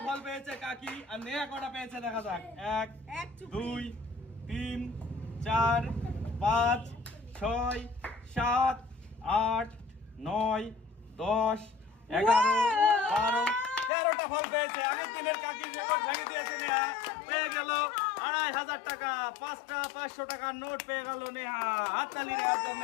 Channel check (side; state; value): right; drops out; at 13.9 s